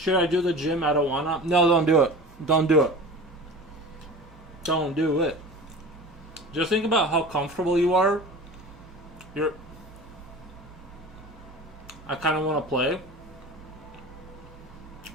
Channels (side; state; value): both; normal; correlation 0.36